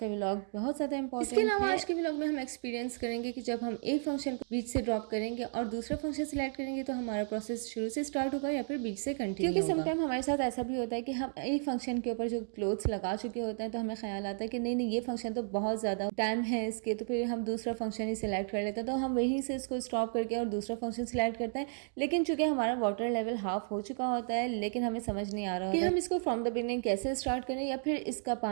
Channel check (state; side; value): silent; left; 56 dB below the other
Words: व्लॉग बहुत ज़्यादा इंपॉर्टेंट है। इसके अलावा आज के व्लॉग में हम एक्सपीरियंस करेंगे कि जब हम एक फंक्शन को बीच से ड्रॉप करेंगे और दूसरा फंक्शन सेलेक्ट करेंगे तो हमारा प्रोसेस शुरू से स्टार्ट होगा या फिर बीच से कंटिन्यू होगा। क्योंकि समटाइम हमारे साथ ऐसा भी होता है कि हम एक फंक्शन के ऊपर जो क्लोथ्स लगा चुके होते हैं तो हमें ख्याल आता है कि नहीं ये फंक्शन तो बहुत ज़्यादा टाइम है इसके, तो फिर हम दूसरा फंक्शन ही सिलेक्ट कर लेते हैं, तो हम वहीं से इसको स्टॉप करके और दूसरा फंक्शन सिलेक्ट करते हैं। लेकिन चूंकि हमारा वाटर लेवल हाफ हो चुका होता है, लेकिन हमें समझ नहीं आ रहा कि हम इसको फ्रॉम द बिगिनिंग कैसे स्टार्ट करें या फिर इसका